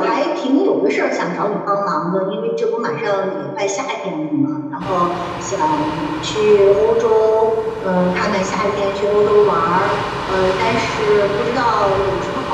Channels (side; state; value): both; identical; correlation 1.00